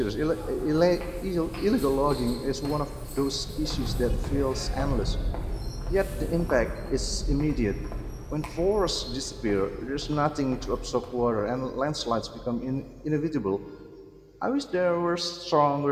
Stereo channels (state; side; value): identical; both; correlation 1.00